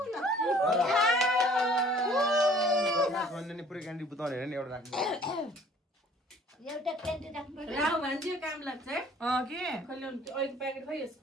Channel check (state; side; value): normal; both; correlation 0.54